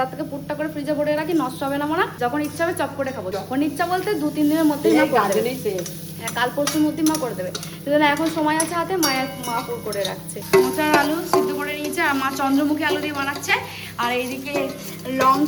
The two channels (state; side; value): identical; both; correlation 1.00